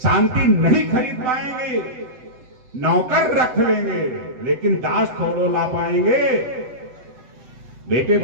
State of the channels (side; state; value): left; late; 7.9 ms